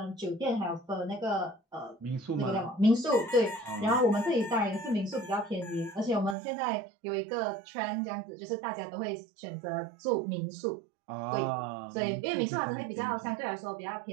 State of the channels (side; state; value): left; drops out; at 6.4 s